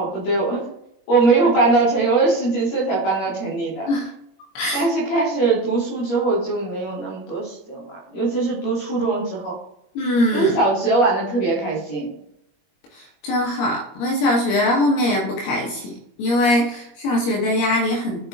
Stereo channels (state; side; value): late; right; 21 ms